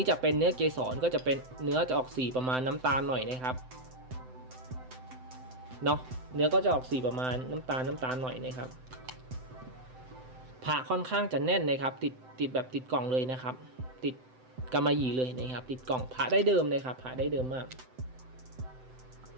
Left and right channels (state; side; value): late; left; 7.8 ms